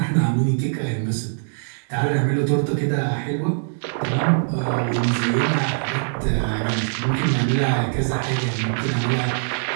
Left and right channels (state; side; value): silent; left; digital silence